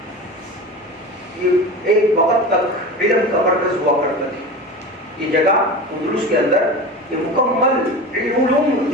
یہ ایک وقت تک علم کا مرکز ہوا کرتا تھا. یہ جگہ اندلس کے اندر یہ مکمل علوم،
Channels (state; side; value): normal; both; correlation 0.30